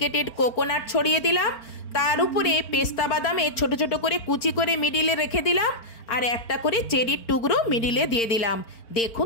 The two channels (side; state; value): right; late; 4.4 ms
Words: কোকোনাট ছড়িয়ে দিলাম। তার উপরে পেস্তা বাদামে ছোট ছোট করে কুচি করে মিডিলে রেখে দিলাম আর একটা করে চেরির টুকরো মিডিলে দিয়ে দিলাম।